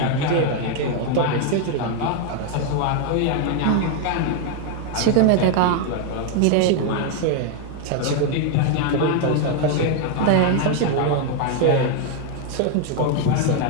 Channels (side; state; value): both; different; correlation 0.01